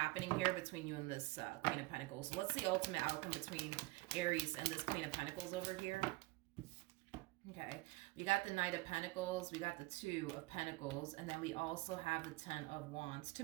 here between you and this Queen of Pentacles. So let's see ultimate outcome between Aries and this Queen of Pentacles over here. Okay, we got the Knight of Pentacles, we got the Two of Pentacles, and then we also have the Ten of Wands. To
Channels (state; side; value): quieter; left; 21.9 dB